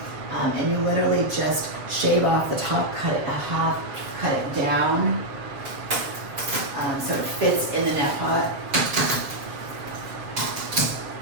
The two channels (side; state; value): left; late; 7.4 ms